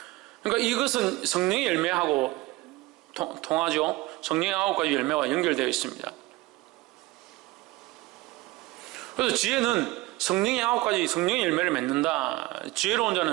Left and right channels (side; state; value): left; quieter; 20.2 dB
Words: 그러니까 이것은 성령의 열매하고 통하죠. 성령의 9가지 열매와 연결되어 있습니다. 그래서 지혜는 성령의 9가지 성령의 열매를 맺는다. 지혜로운